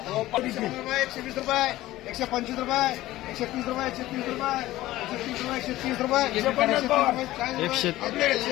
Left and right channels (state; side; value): quieter; right; 16.2 dB